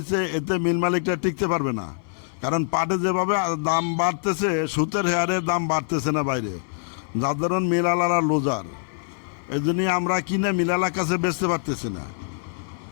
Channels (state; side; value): silent; right; 59 dB below the other